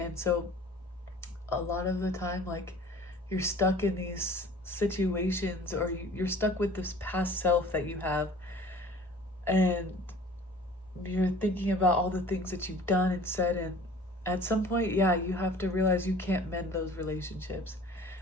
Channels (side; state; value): both; normal; correlation 0.47